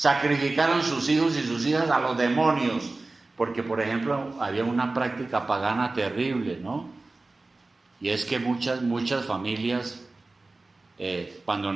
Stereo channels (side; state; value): left; quieter; 3.3 dB